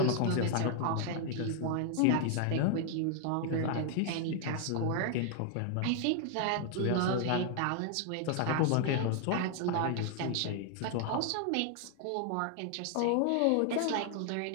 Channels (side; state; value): both; different; correlation 0.00